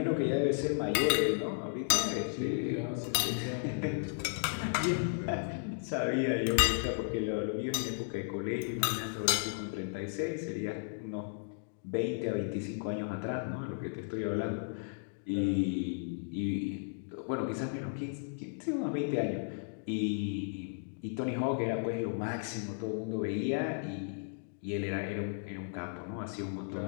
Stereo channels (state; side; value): silent; right; digital silence